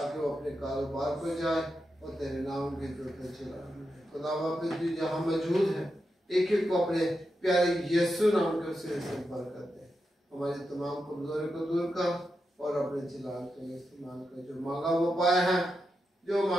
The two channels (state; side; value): normal; both; correlation 0.87